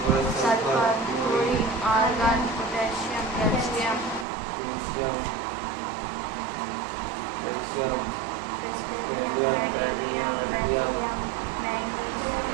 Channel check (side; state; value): left; drops out; at 4.2 s